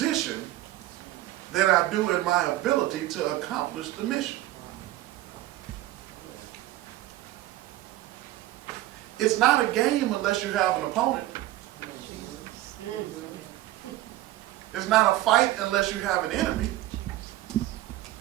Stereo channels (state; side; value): quieter; left; 15.6 dB